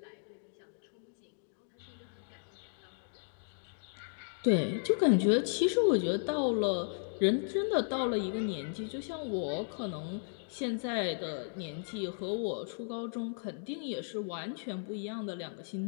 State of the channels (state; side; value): silent; right; digital silence